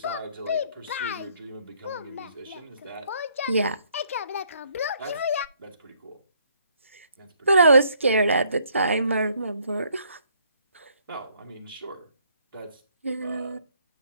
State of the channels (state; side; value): inverted; both; correlation -0.66